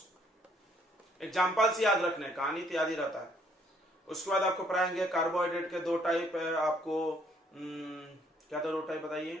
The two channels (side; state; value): both; normal; correlation 0.65